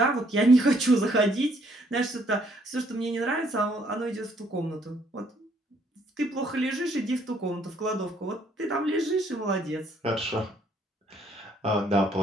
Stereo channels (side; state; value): both; normal; correlation 0.66